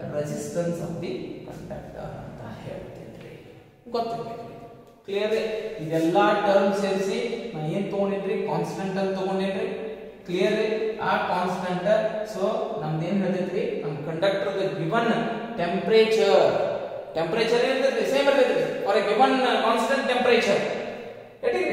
resistance of the conductor ಅಂತ ಹೇಳ್ತೇನ್ರಿ. ಗೊತ್ತಿರಬೇಕು. ಕ್ಲಿಯರ್? ಇದೆಲ್ಲ ಟರ್ಮ್ ಸೇರಿಸಿ ನಾ ಏನು ತಗೊಂಡಿದ್ರಿ? ಕಾನ್ಸ್ಟೆಂಟ್ ಅಂತ ತಗೊಂಡಿದ್ರಿ. ಕ್ಲಿಯರ್? ಆ ಕಾನ್ಸ್ಟೆಂಟ್ ಸೊ ನಮ್ದು ಏನು ಹೇಳ್ತೈತ್ರಿ? ನಮ್ಮ ಕಂಡಕ್ಟರ್ ದ ಗಿವನ್ ಟೆಂಪರೇಚರ್ ಇರ್ತೈತಿ, ಸೇಮ್ ಇರ್ತೈತಿ for A given constant temperature. Getting?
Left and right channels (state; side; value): identical; both; correlation 1.00